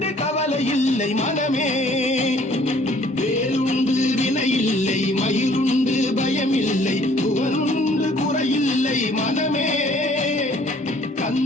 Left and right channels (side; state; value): both; normal; correlation 0.58